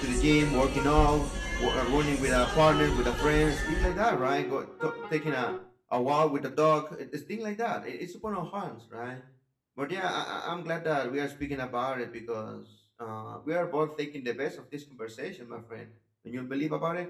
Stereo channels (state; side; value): identical; both; correlation 1.00